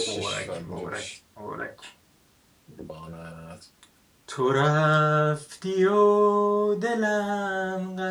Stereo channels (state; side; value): identical; both; correlation 1.00